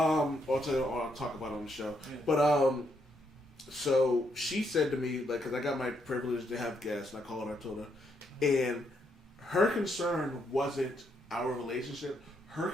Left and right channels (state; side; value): normal; both; correlation 0.76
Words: talk about it on the show. Yeah. But so she said to me, like, because I got my privilege to have guests, and I called her, I told her, and her concern wasn't our relationship. Her